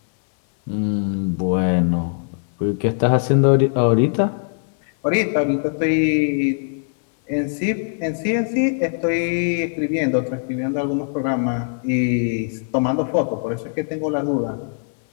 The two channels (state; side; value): silent; right; 61 dB below the other